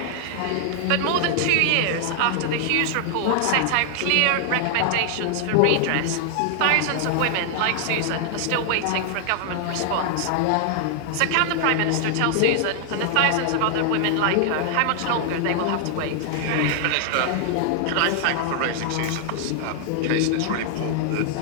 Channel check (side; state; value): both; different; correlation 0.00